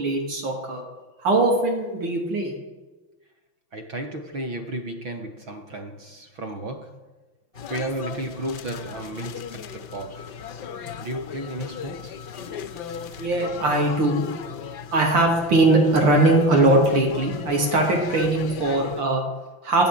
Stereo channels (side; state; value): left; late; 5.9 ms